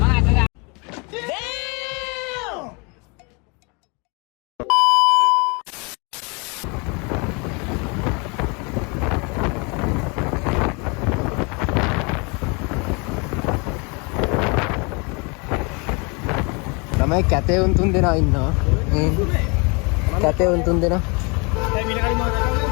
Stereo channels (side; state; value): right; quieter; 30.9 dB